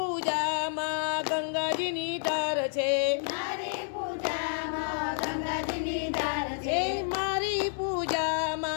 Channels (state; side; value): silent; right; digital silence